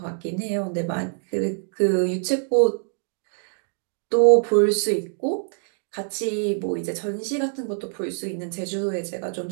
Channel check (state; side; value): silent; left; digital silence